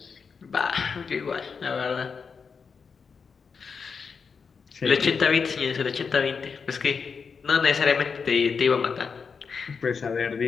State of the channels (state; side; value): quieter; right; 5.6 dB